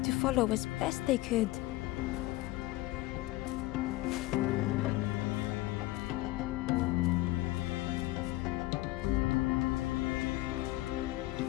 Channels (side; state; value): right; quieter; 18.0 dB